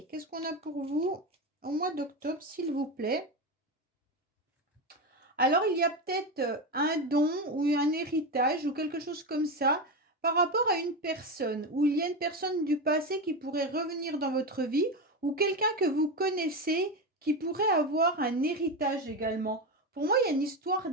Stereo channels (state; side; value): normal; both; correlation 0.16